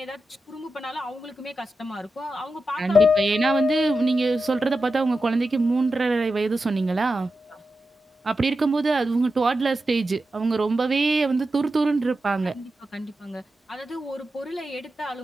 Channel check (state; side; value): normal; both; correlation 0.90